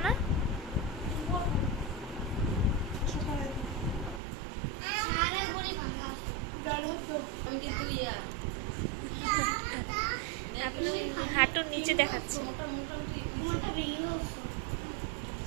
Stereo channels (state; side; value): drops out; left; at 4.2 s